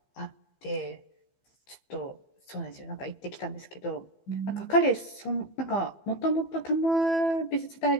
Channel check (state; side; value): late; right; 15 ms